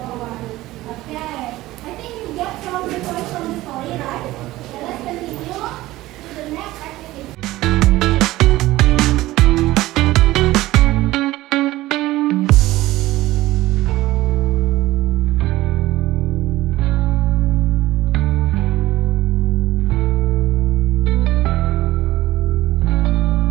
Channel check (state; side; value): quieter; left; 17.2 dB